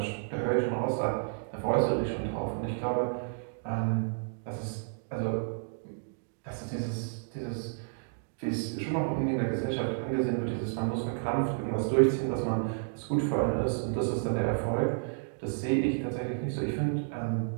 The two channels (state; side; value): silent; left; digital silence